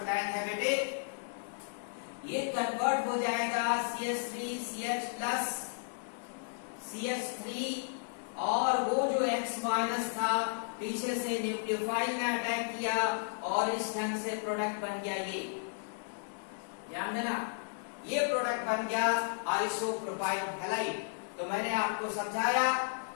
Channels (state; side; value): silent; right; 55 dB below the other